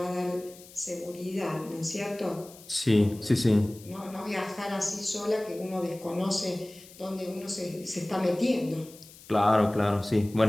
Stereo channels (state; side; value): noise; left; hiss, 21 dB below the sound